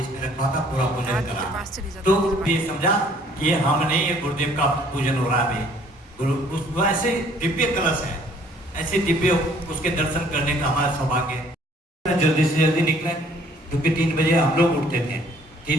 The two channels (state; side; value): normal; both; correlation 0.59